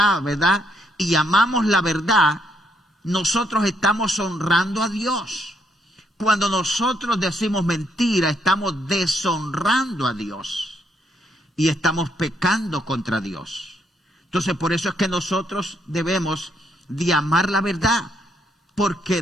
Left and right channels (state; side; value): normal; both; correlation 0.74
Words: ¿verdad? Y amamos la verdad, nosotros estamos honrando a Dios. Cuando nosotros decimos mentira, estamos deshonrando a Dios y estamos pecando contra Dios. Entonces, por eso es que nosotros debemos de amar la verdad,